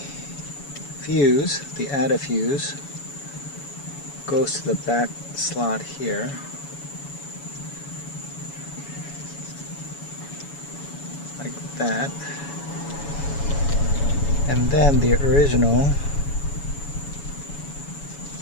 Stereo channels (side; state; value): right; late; 7.1 ms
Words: fuse, the added fuse, goes to the back slot here. Like that. And then the original